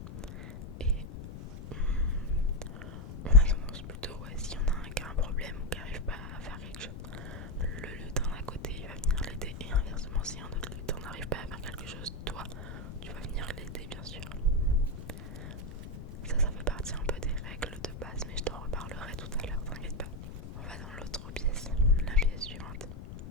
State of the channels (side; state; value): left; noise; rumble, 10 dB below the sound